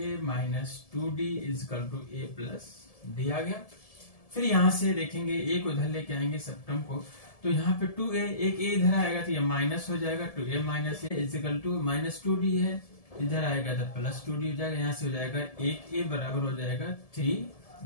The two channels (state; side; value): late; right; 1.7 ms